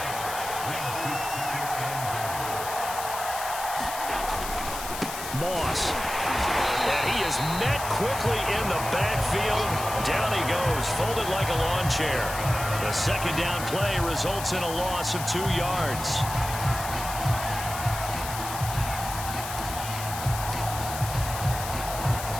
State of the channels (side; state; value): left; noise; hiss, 8 dB below the sound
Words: Moss. And he is met quickly in the backfield. Down he goes, folded like a lawn chair. The 2nd down play results in a loss of 2 yards.